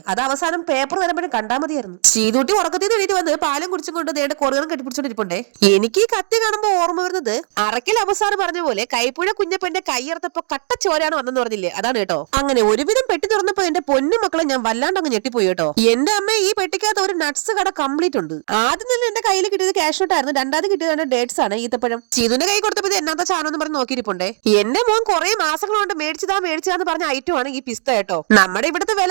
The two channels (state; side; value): silent; left; 63 dB below the other